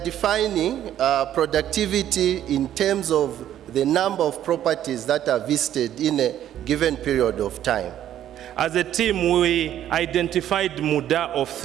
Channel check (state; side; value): quieter; left; 11.3 dB